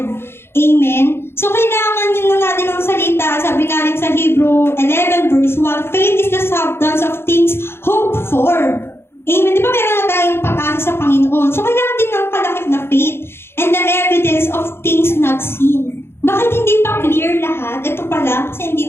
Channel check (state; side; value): late; right; 0.12 ms